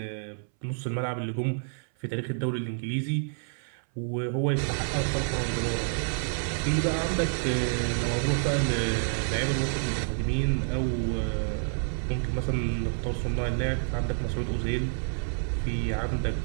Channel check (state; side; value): silent; left; 59 dB below the other